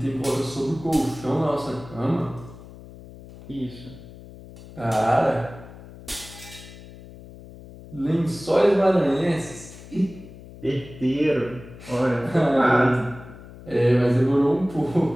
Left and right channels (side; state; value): left; noise; hum, 17 dB below the sound